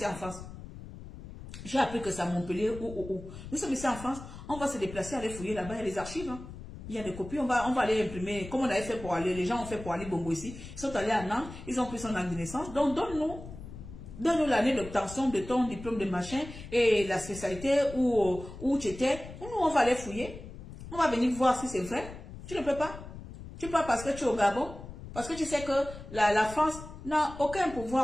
en France. J'ai appris que c'est à Montpellier ou. Nous sommes ici en France. On va se déplacer, aller fouiller là-bas. Il y a les archives. Hein. Il y a des copies. On va aller imprimer. Comme on avait fait pour aller. Les gens ont fait pour aller Bongo ici. Ils sont allés à Nantes. Ils ont pris son acte de naissance. Donc donne-nous l'année d'obtention de ton diplôme de machin et la spécialité où tu étais. Nous, on va aller fouiller. On va venir voir si c'est vrai. Tu ne peux pas. Tu peux pas parce que tu es au Gabon. Parce que tu sais que la France n'a aucun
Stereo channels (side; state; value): left; noise; rumble, 13 dB below the sound